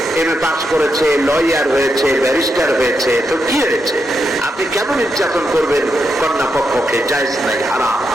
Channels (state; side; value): normal; both; correlation 0.83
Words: এমএ পাস করেছে, লয়ার হয়েছে, ব্যারিস্টার হয়েছে, তো কি হয়েছে? আপনি কেন নির্যাতন করবেন কন্যা পক্ষকে? পক্ষে জায়েজ নাই, হারাম।